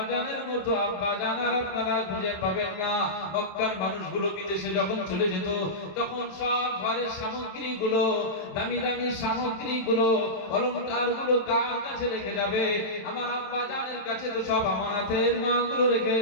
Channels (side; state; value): right; late; 28 ms